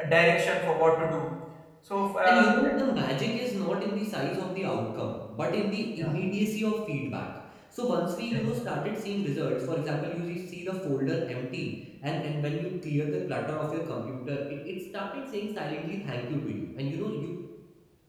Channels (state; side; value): identical; both; correlation 1.00